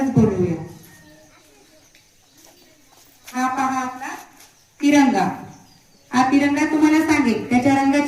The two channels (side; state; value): both; identical; correlation 1.00